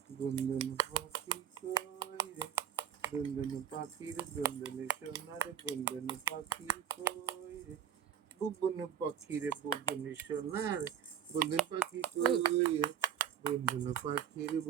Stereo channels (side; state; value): left; quieter; 9.1 dB